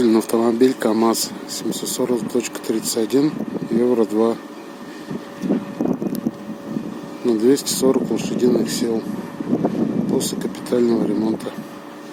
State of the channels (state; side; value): identical; both; correlation 1.00